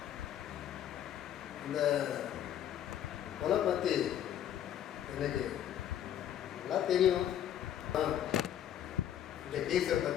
இந்த கொலை பற்றி எனக்கு நல்லா தெரியும். இந்த கேஸை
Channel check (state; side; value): quieter; right; 10.5 dB